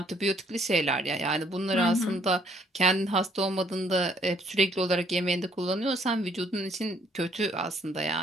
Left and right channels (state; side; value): normal; both; correlation 0.64